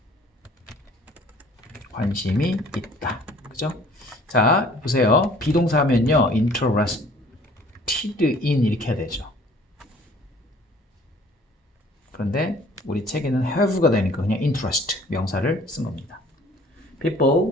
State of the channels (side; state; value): both; normal; correlation 0.53